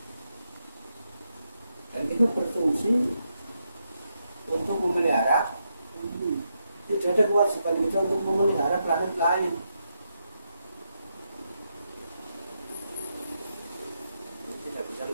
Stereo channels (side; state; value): both; inverted; correlation -0.82